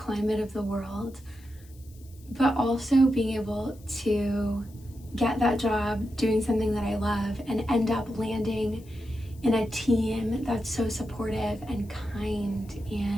of the world. But also being able to get that job doing something that I love and end up landing in a team that's so supportive and kind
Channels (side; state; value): left; noise; hiss, 27 dB below the sound